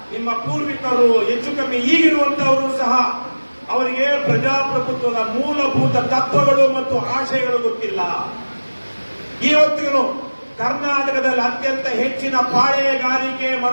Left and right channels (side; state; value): both; inverted; correlation -1.00